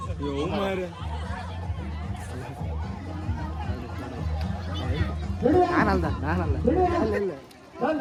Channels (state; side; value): identical; both; correlation 1.00